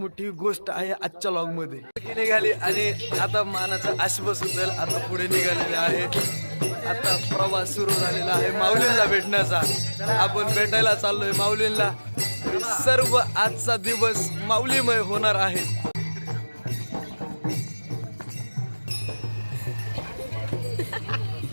गोष्ट आहे आजच्या लॉगमध्ये. निघाली आणि आता मानाचा आश्वास होईल. आता पुढे निघालेले आहे. आता प्रवास सुरू झालेला आहे माऊलींना भेटण्याचा. आपण भेटायला चाललोय माऊलींना. सर्व आजचा दिवस माऊलीमय होणार आहे.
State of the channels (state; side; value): inverted; both; correlation -1.00